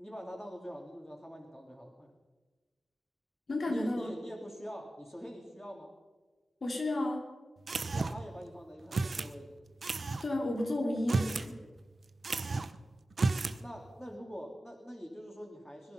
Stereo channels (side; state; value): both; normal; correlation 0.94